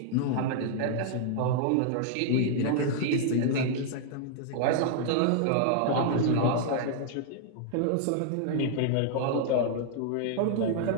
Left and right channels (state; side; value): different; both; correlation -0.01